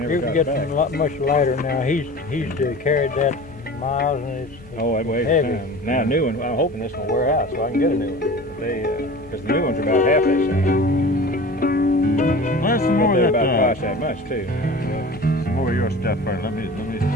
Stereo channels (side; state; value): both; normal; correlation 0.38